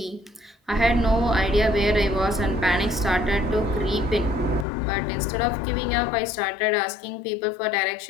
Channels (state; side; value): drops out; right; at 4.7 s